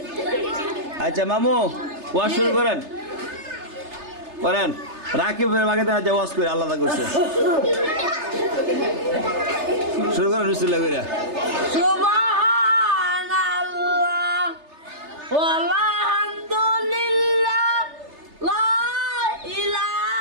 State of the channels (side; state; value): left; late; 3.3 ms